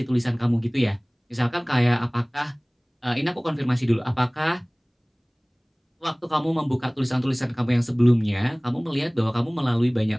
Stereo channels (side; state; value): both; identical; correlation 1.00